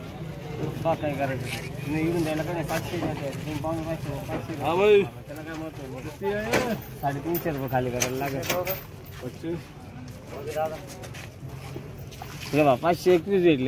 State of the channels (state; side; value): identical; both; correlation 1.00